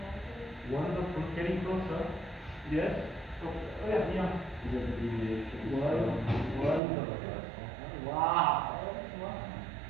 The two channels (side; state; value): left; drops out; at 6.8 s